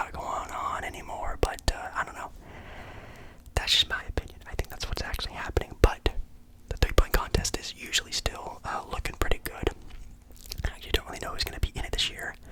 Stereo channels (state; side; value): identical; both; correlation 1.00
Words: going on anymore, but I don't know. That's just my opinion. I think that's what's actually happening, but the three-point contest is usually still looking pretty good. I actually don't really know who's going to be in it this year.